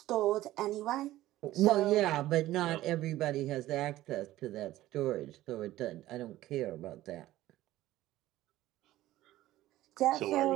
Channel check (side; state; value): left; quieter; 15.4 dB